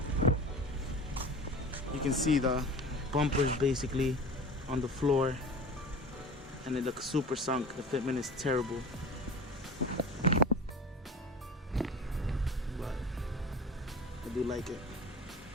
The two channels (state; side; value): normal; both; correlation 0.36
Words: you can see the bumpers basically on the floor, and it looks super sunk. The fitment is terrible, but I do like it.